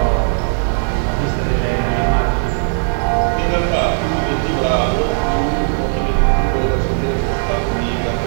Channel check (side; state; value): left; silent; digital silence